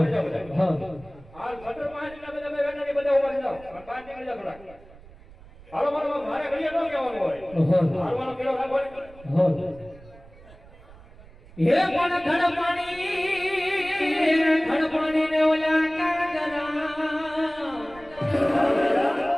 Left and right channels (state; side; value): noise; right; rumble, 22 dB below the sound